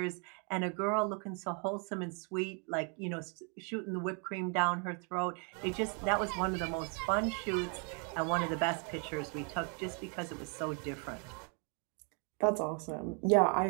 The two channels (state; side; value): quieter; left; 37.9 dB